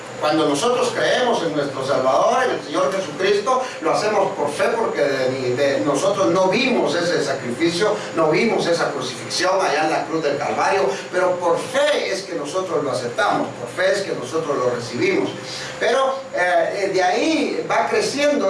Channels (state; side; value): identical; both; correlation 1.00